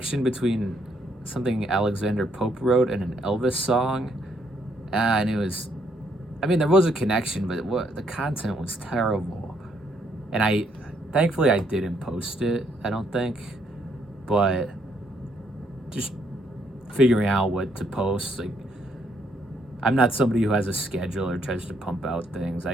between something Alexander Pope wrote and an Elvis song, and it was, I mean, there was a connection, but the content was terrible, and thankfully I didn't post it, I don't think, but just figuring out what to post, like, I'm not somebody who has a schedule or tries to pump out things.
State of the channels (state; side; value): normal; both; correlation 0.72